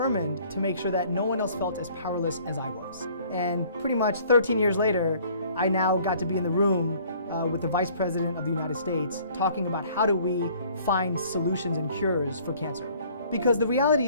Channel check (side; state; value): both; inverted; correlation -0.56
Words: to make sure that no one else felt as powerless as I was. And pretty much 13 years later, I now got to be in the room with the Vice President of the United States talking about how do we find solutions and cures for cancer. Because the